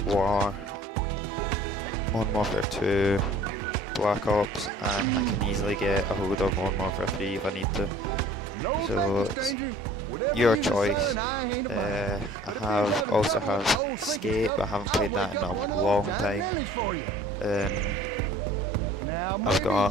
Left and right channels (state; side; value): normal; both; correlation 0.50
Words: War, Modern Warfare 2, Black Ops, and I can easily get a hold of Modern Warfare 3 if I need to. So it's your choice. I also have Skate, but I haven't played that in a long time. I've